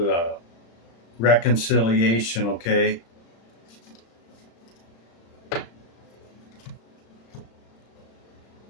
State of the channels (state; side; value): late; right; 35 ms